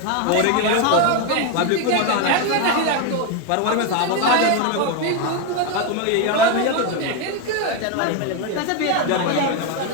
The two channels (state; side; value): different; both; correlation 0.02